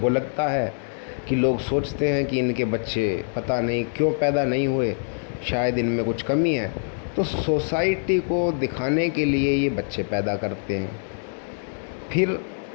लगता है कि लोग सोचते हैं कि इनके बच्चे पता नहीं क्यों पैदा नहीं हुए, शायद इनमें कुछ कमी है, तो सोसाइटी को दिखाने के लिए ये बच्चे पैदा करते हैं। फिर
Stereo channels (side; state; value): right; silent; digital silence